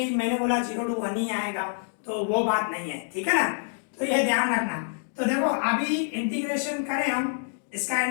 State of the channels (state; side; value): silent; right; digital silence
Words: मैंने बोला 0 to 1 ही आएगा, तो वो बात नहीं है, ठीक है ना। तो ये ध्यान रखना। तो देखो अभी इंटीग्रेशन करें हम, इसका